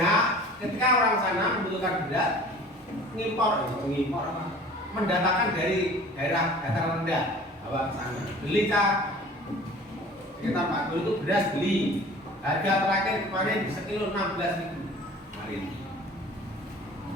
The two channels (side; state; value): both; normal; correlation 0.45